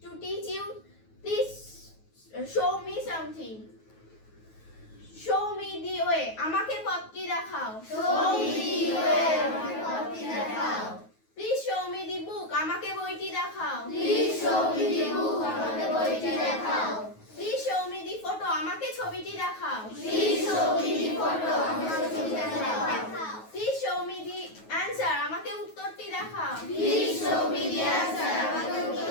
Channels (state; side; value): late; right; 9.3 ms